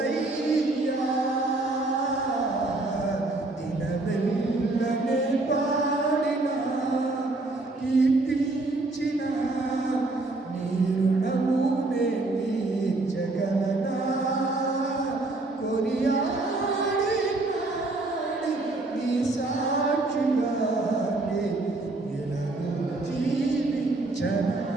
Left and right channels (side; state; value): left; quieter; 3.0 dB